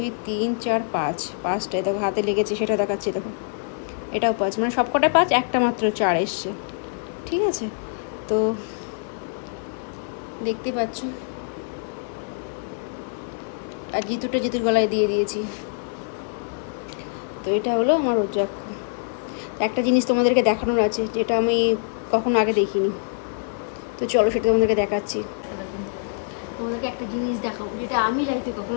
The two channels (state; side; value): silent; right; digital silence